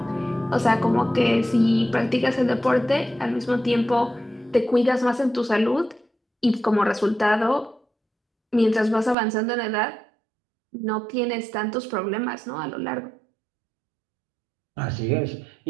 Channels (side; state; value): left; drops out; at 9.2 s